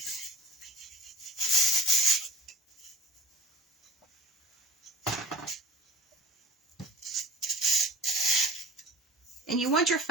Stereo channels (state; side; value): normal; both; correlation 0.37